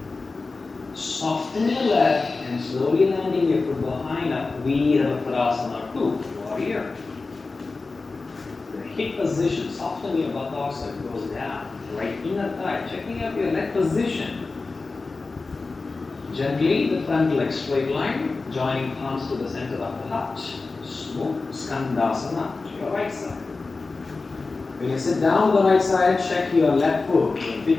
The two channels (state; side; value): quieter; right; 3.8 dB